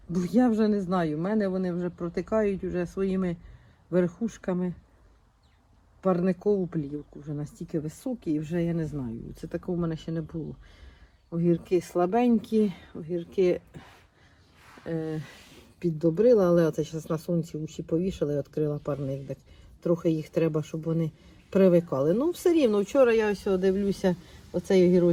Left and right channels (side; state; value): both; identical; correlation 1.00